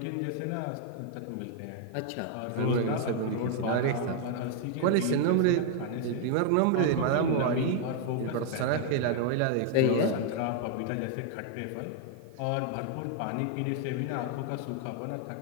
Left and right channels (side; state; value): both; different; correlation 0.00